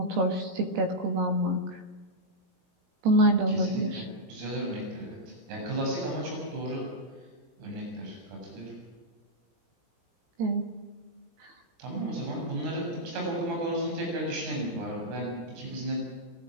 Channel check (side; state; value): left; late; 17 ms